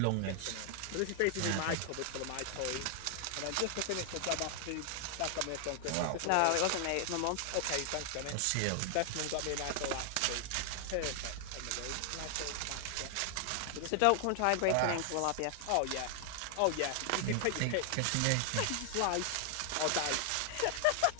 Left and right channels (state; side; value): different; both; correlation 0.00